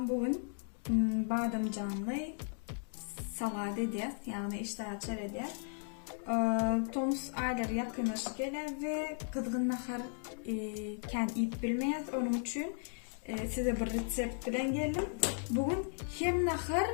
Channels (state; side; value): silent; right; 54 dB below the other